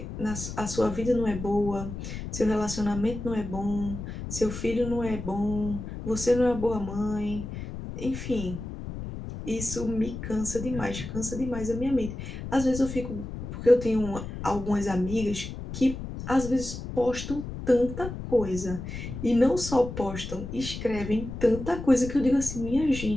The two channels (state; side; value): noise; left; rumble, 8 dB below the sound